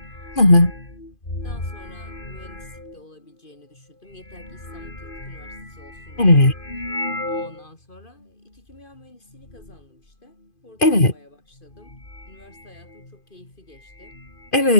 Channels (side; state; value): right; late; 2.5 ms